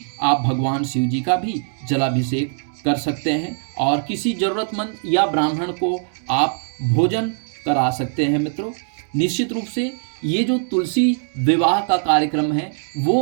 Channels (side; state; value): left; silent; digital silence